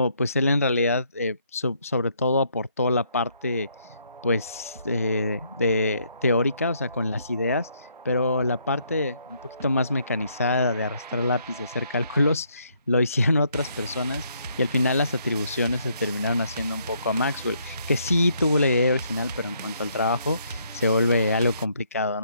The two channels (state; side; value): inverted; both; correlation -0.71